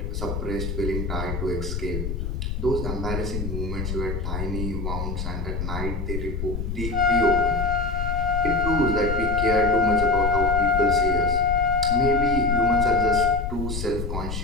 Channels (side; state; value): left; noise; rumble, 4 dB below the sound